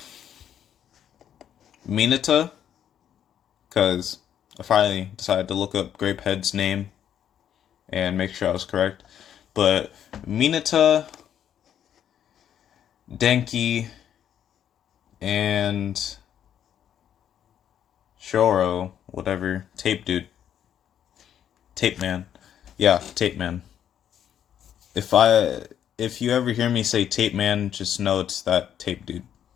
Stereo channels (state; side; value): quieter; right; 9.7 dB